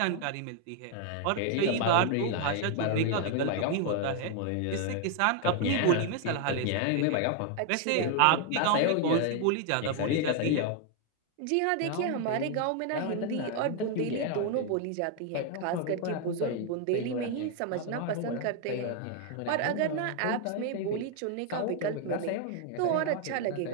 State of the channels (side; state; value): both; different; correlation 0.00